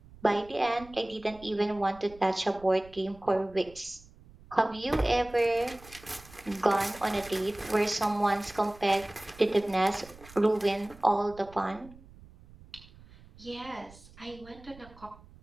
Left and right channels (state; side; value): noise; right; rumble, 22 dB below the sound